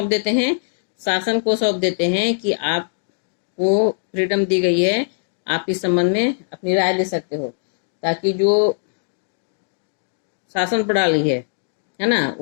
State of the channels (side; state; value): right; silent; digital silence